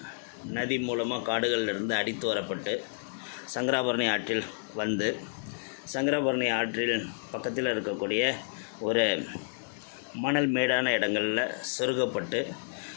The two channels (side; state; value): right; silent; digital silence